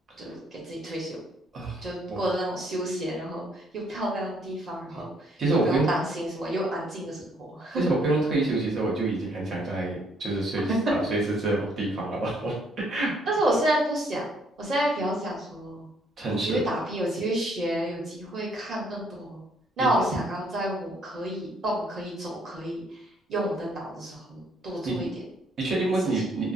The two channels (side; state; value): both; normal; correlation 0.67